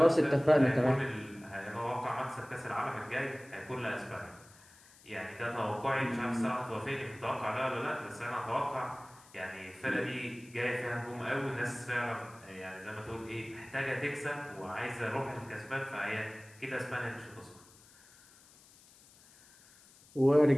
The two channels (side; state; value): left; noise; hiss, 25 dB below the sound